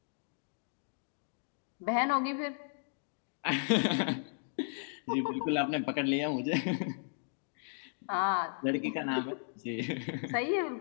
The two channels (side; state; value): right; silent; digital silence